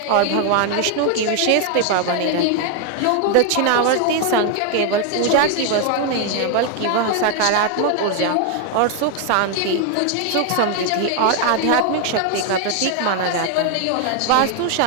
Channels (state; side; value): different; both; correlation 0.00